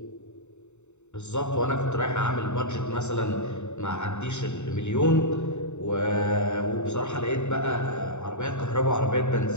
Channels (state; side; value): late; right; 0.83 ms